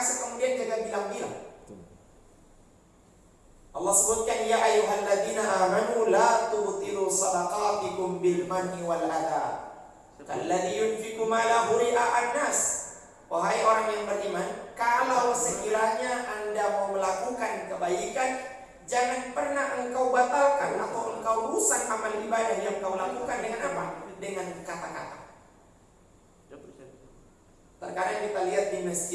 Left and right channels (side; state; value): both; identical; correlation 1.00